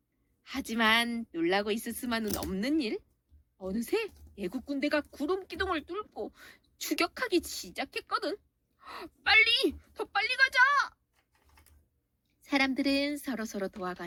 하지만 놀라고 있을 수만은 없는 일. 어느새 애국 군대가 구름 기둥을 뚫고 추격하기 시작했거든. 빨리! 더 빨리 가자! 사람들은 서로서로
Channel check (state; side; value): identical; both; correlation 1.00